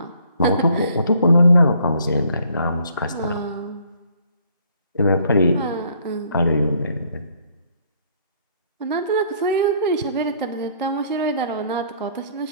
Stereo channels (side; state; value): both; inverted; correlation -0.63